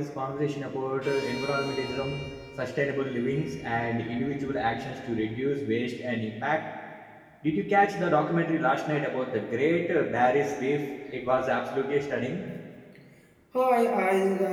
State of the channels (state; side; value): identical; both; correlation 1.00